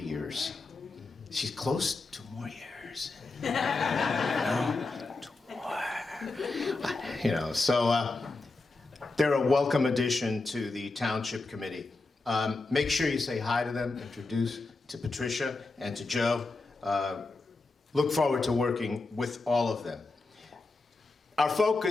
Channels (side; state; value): right; quieter; 3.5 dB